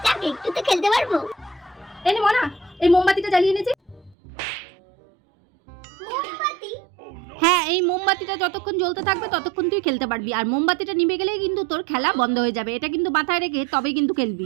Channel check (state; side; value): drops out; left; at 4.2 s